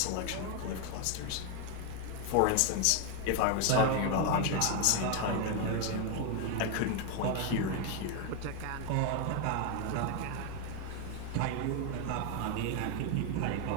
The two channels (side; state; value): both; different; correlation 0.01